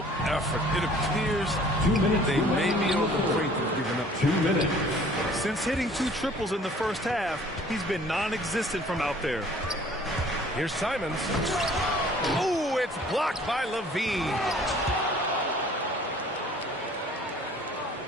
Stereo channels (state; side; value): normal; both; correlation 0.53